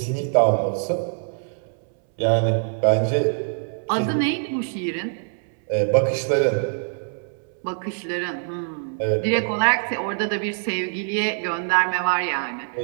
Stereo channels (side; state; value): left; silent; 63 dB below the other